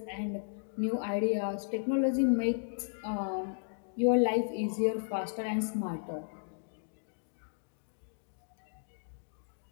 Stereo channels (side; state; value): right; silent; digital silence